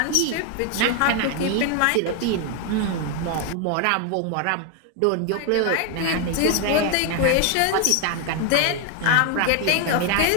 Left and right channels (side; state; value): both; different; correlation 0.01